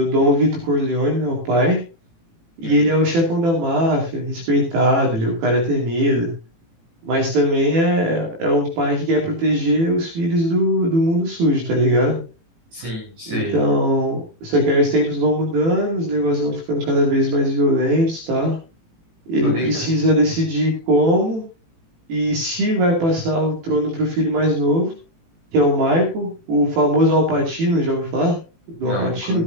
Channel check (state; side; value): late; left; 18 ms